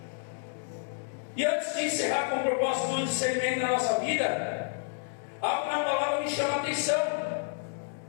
E antes de encerrar com o propósito do discernimento na nossa vida, algo na palavra me chama a atenção.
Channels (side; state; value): right; silent; digital silence